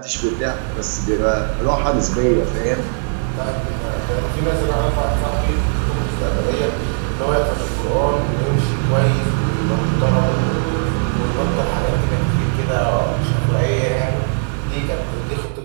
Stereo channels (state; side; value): silent; left; digital silence